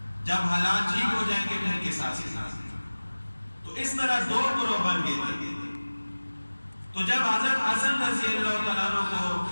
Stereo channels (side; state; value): both; inverted; correlation -1.00